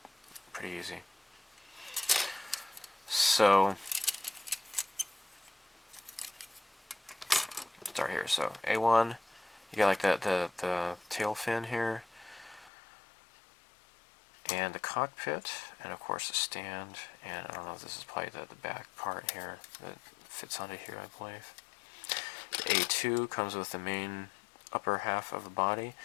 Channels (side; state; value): right; drops out; at 12.7 s